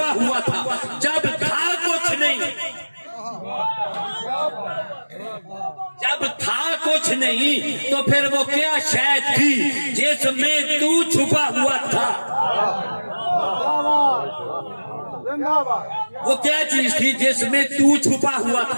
हुआ था, जब था कुछ नहीं, जब था कुछ नहीं तो फिर वो क्या शय थी जिसमें तू छुपा हुआ था? वो क्या चीज थी जिसमें तू छुपा हुआ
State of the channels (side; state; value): both; inverted; correlation -1.00